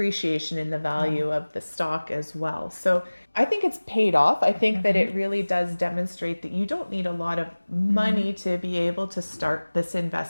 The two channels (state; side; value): inverted; both; correlation -1.00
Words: in the value of the stock as well. So I think it's paid off. I think that it really does demonstrate that you don't need a lot of money to be able to start this